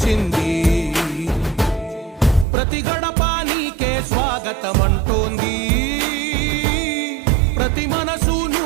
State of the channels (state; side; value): drops out; left; at 2.5 s